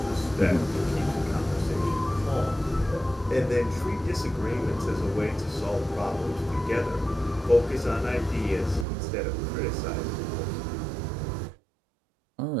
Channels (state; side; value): drops out; left; at 8.8 s